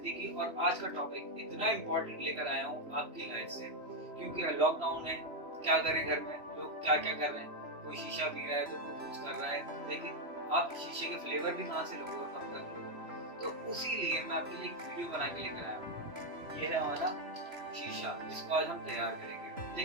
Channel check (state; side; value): late; left; 3.0 ms